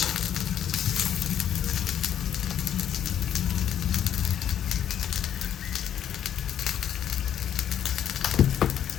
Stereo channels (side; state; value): right; quieter; 9.8 dB